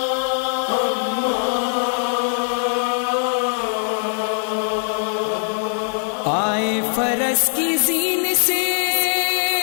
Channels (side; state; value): right; silent; digital silence